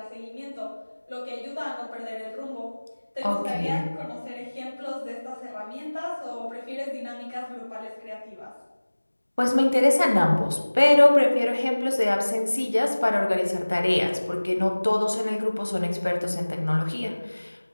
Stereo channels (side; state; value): both; inverted; correlation -1.00